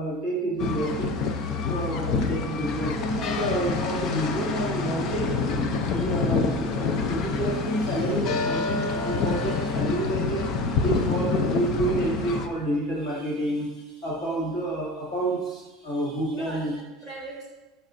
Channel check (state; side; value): normal; both; correlation 0.34